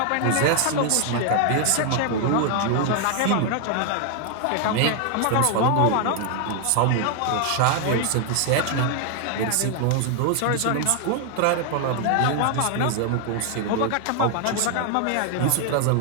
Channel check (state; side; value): different; both; correlation 0.00